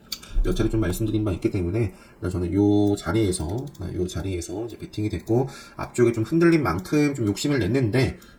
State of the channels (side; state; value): both; identical; correlation 1.00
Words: 몇 차례 좀 말씀드린 바 있기 때문에 저는 요 자리에서 이제 베팅이 됐고 앞쪽에 좀 흔들린 만큼 좀 욕심을 냈는데